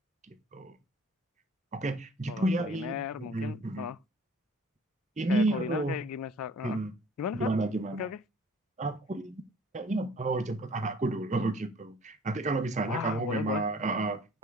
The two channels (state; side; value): normal; both; correlation 0.52